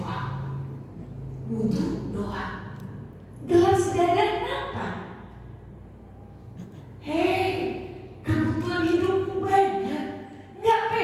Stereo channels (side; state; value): both; identical; correlation 1.00